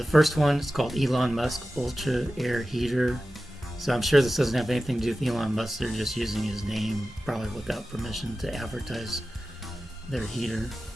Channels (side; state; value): both; normal; correlation 0.94